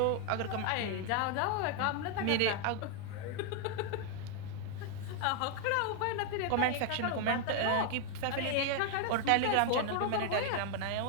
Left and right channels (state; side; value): different; both; correlation 0.00